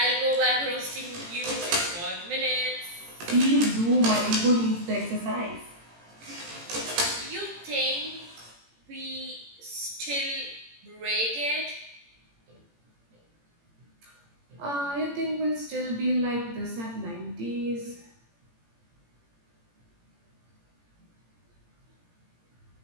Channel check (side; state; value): left; late; 18 ms